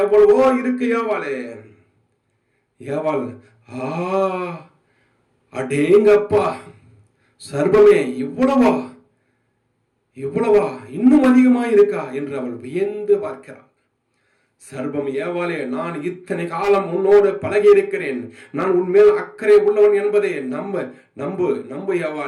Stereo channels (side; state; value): both; identical; correlation 1.00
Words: எவ்வளவோ இருக்கு. ஏவாள் அடேங்கப்பா, சர்ப்பமே இவ்வளவா இன்னும் அதிகமா இருக்கா என்று அவள் வியந்து பார்க்கிறாள். சர்ப்பம் ஏவாளே, நான் இத்தனை காலம் உன்னோடு பழகி இருக்கிறேன், நான் உன்மேல் அக்கறை உள்ளவன் என்பதை நம்பு